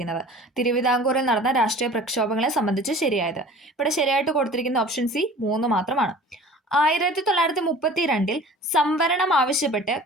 തിരുവിതാംകൂറിൽ നടന്ന രാഷ്ട്രീയ പ്രക്ഷോഭങ്ങളെ സംബന്ധിച്ച് ശരിയായത്. ഇവിടെ ശരിയായിട്ട് കൊടുത്തിരിക്കുന്ന ഓപ്ഷൻ സി 3 മാത്രമാണ്. 1932 സംവരണം ആവശ്യപ്പെട്ട്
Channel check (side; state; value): both; normal; correlation 0.44